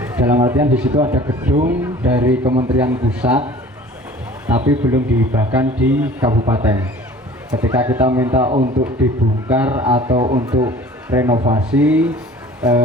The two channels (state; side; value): normal; both; correlation 0.46